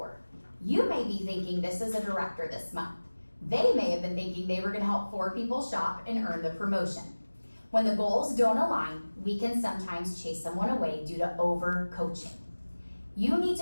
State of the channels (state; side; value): inverted; both; correlation -1.00